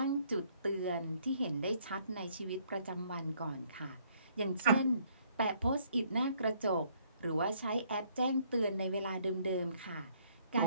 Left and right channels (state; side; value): inverted; both; correlation -0.65